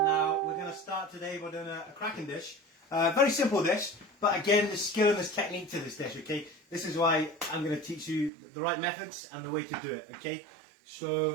we're going to start today by doing a cracking dish. Very simple dish, but again, there's skill and there's technique to this dish, okay? This is why I'm going to teach you the right methods and the way to do it, okay?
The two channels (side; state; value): left; drops out; at 8.3 s